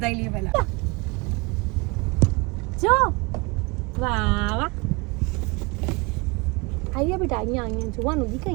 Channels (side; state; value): left; quieter; 27.2 dB